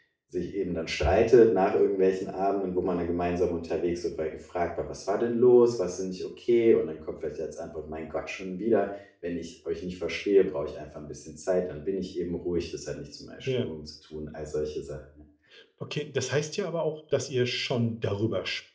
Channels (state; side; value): identical; both; correlation 1.00